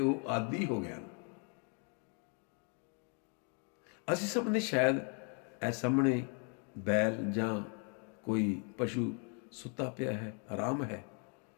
ਆਦੀ ਹੋ ਗਏ ਹਨ। ਅਸੀਂ ਸਭ ਨੇ ਸ਼ਾਇਦ ਇਹ ਸਾਹਮਣੇ ਬੈਲ ਜਾਂ ਕੋਈ ਪਸ਼ੂ ਸੁੱਤਾ ਪਿਆ ਹੈ, ਆਰਾਮ ਹੈ,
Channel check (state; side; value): quieter; right; 38.7 dB